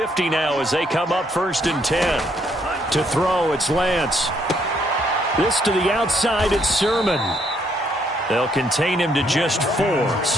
now as they come up 1st and 10. To throw, it's Lance. This to the outside, it's Sermon. They'll contain him to just 4.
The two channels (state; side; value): normal; both; correlation 0.70